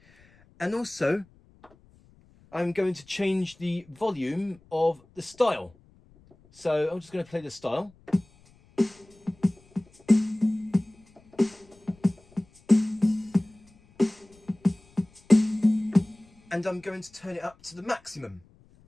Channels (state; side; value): noise; left; rumble, 29 dB below the sound